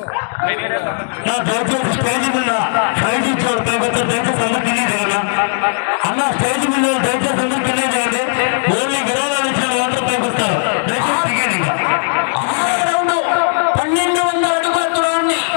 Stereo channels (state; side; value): silent; right; digital silence